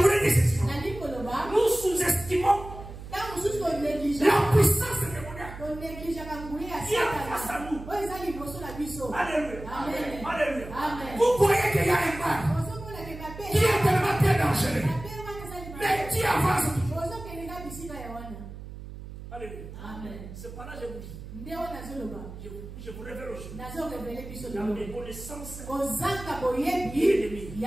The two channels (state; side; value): noise; right; hum, 12 dB below the sound